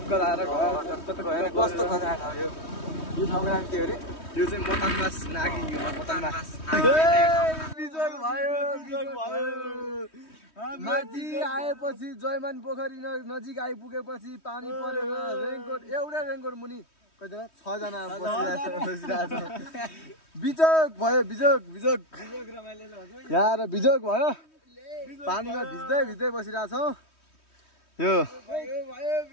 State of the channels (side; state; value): right; late; 3.2 ms